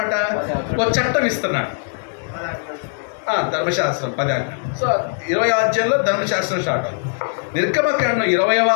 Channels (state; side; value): silent; right; 66 dB below the other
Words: ఒక చట్టం ఇస్తున్నాడు. ధర్మశాస్త్రం 10 ఆజ్ఞలు. సో 20వ అధ్యాయంలో ధర్మశాస్త్రం స్టార్ట్ అవుతుంది. నిర్గమకాండం 20వ